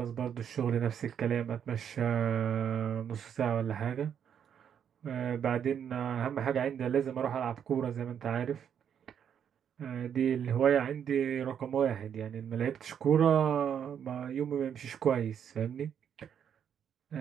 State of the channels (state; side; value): quieter; left; 8.4 dB